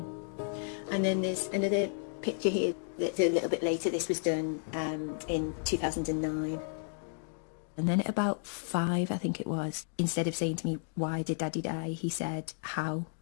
And then there's another picture here that's a little bit later. This was done in 2009. And then at about 5, I think it was, instead of saying to me, why did Daddy die? He said, how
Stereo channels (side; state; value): right; silent; digital silence